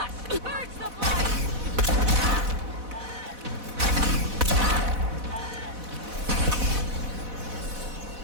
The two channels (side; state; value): left; late; 4.1 ms